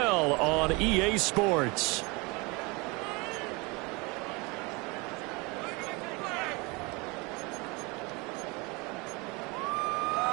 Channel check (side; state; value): left; quieter; 27.0 dB